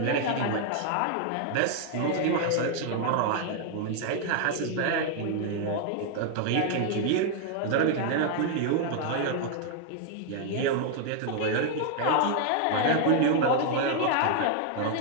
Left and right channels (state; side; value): different; both; correlation 0.00